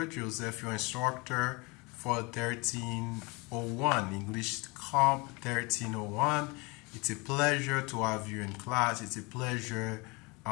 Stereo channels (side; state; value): right; quieter; 27.0 dB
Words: Joseph, your instructor for 1301, English Comp 1301. It's a pleasure to have you in class. It's a pleasure